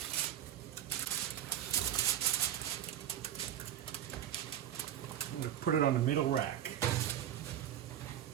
I'm going to put it on the middle rack.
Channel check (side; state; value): left; quieter; 10.8 dB